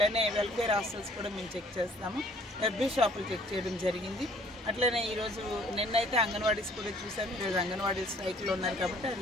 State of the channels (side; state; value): both; normal; correlation 0.58